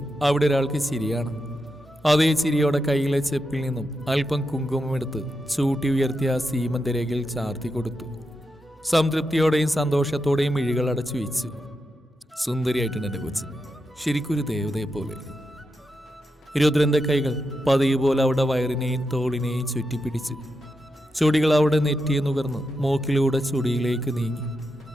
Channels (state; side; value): normal; both; correlation 0.86